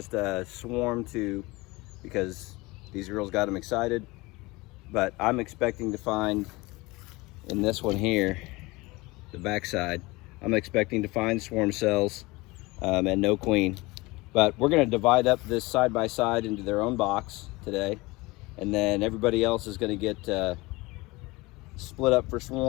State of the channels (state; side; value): quieter; right; 22.6 dB